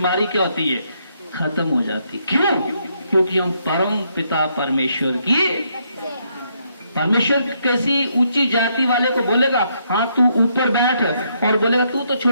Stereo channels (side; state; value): both; inverted; correlation -0.74